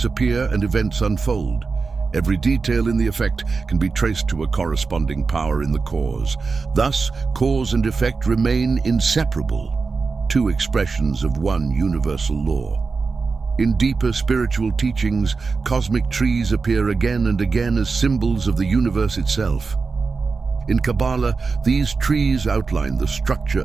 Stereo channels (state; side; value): quieter; left; 4.5 dB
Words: appear and events unfold. Every detail in the effect can be traced to a corresponding power in the cause. Thus, cause and effect remain inseparable, two expressions of one universal law. In deeper spiritual teachings, cosmic trees appear again and again as symbols of the universe itself. In Kabbalah, these trees outline the structure